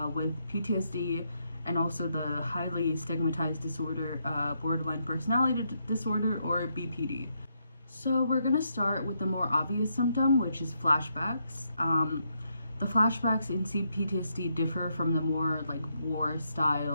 with PTSD and also the highly stigmatized disorder, borderline personality disorder, or BPD. So we're going to start with the more obvious symptom, which is flashbacks. The flashbacks in CPTSD differ from the more war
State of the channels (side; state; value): both; inverted; correlation -0.78